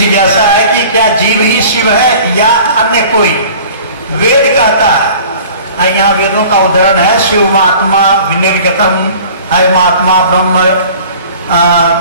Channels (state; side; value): inverted; both; correlation -0.46